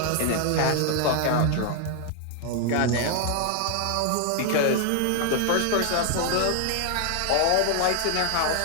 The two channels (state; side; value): different; both; correlation 0.00